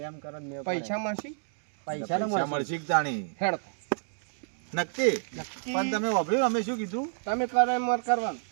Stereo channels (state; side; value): silent; left; digital silence